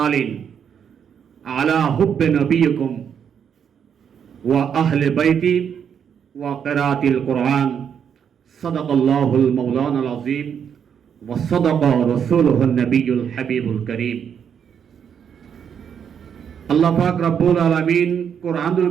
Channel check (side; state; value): left; quieter; 7.8 dB